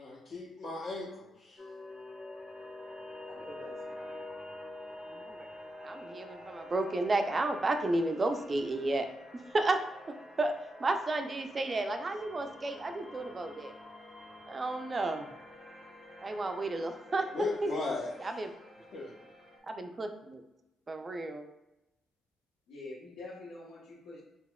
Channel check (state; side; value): normal; both; correlation 0.87